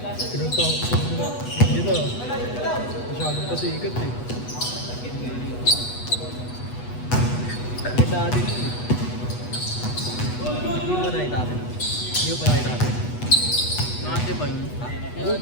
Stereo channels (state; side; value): late; right; 8.2 ms